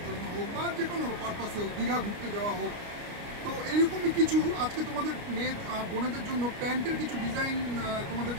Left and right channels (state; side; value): late; left; 29 ms